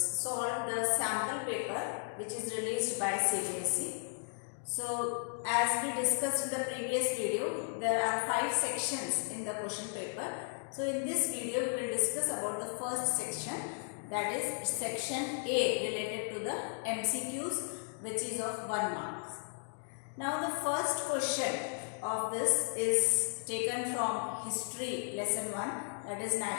the sample paper which is released by CBSE. So as we discussed in the previous video, there are 5 sections in the question paper. So in this video we will discuss about the first section, that is section A, related to the MCQs, which is of 1 mark. Now the first question of this is taken from history lesson 1, that is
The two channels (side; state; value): right; silent; 54 dB below the other